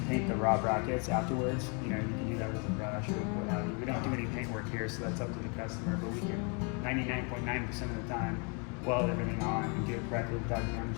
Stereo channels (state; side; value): quieter; right; 35.4 dB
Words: paint the raw brackets afterwards. You know, you can do that with a brush or what have you. We don't do any paint work here, so that's up to the customer, but we can 99.9% of the time weld everything on and do it correctly without